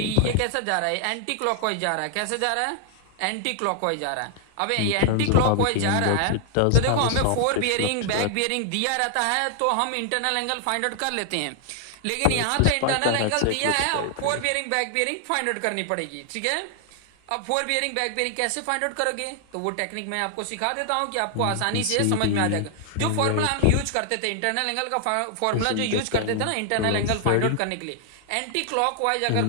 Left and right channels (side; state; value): both; different; correlation 0.00